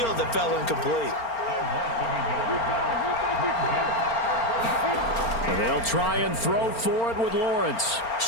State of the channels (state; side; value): late; right; 4.4 ms